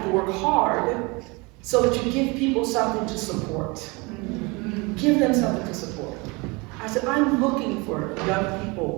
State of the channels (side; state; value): left; quieter; 27.0 dB